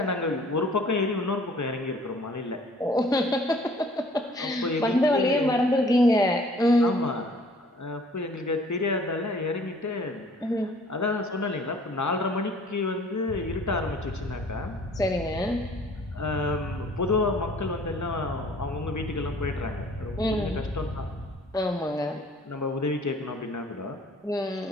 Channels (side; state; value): both; normal; correlation 0.54